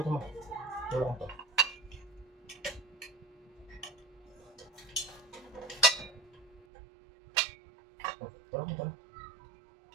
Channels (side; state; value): left; drops out; at 6.7 s